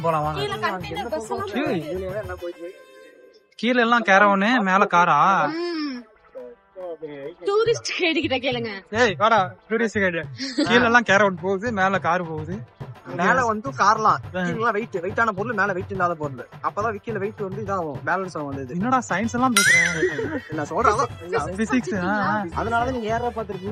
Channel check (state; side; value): identical; both; correlation 1.00